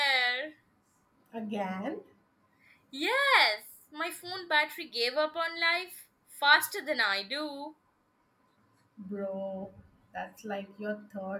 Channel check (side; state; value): both; identical; correlation 1.00